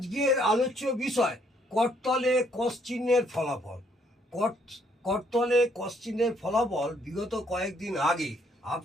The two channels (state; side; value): normal; both; correlation 0.68